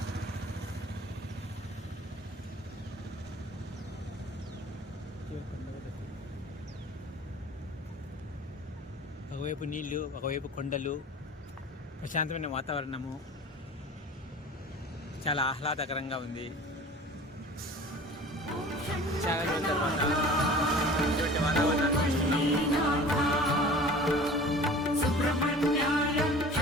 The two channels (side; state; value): both; normal; correlation 0.43